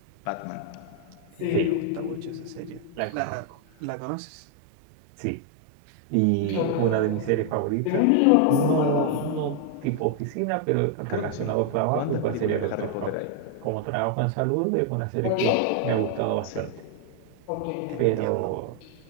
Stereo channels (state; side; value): different; both; correlation 0.00